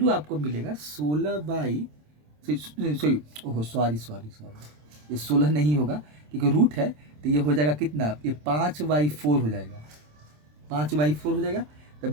आपको मिलेगा 16 सॉरी ओहो सॉरी, ये 16 नहीं होगा क्योंकि रूट है। तो ये हो जाएगा कितना, ये 5/4 हो जाएगा, 5/4 हो जाएगा। तो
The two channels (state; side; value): late; left; 27 ms